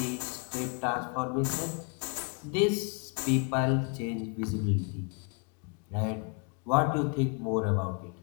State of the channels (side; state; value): right; quieter; 35.7 dB